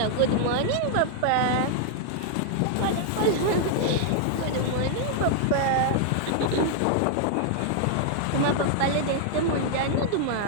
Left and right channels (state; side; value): different; both; correlation 0.00